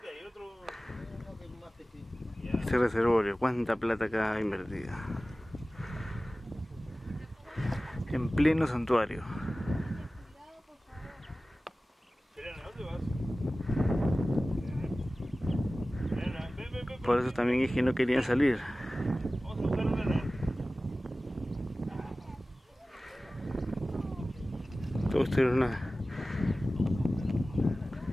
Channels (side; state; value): both; normal; correlation 0.97